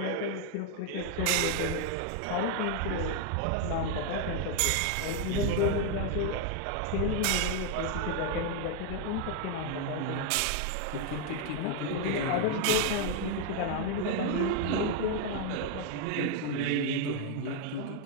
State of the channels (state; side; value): different; both; correlation 0.01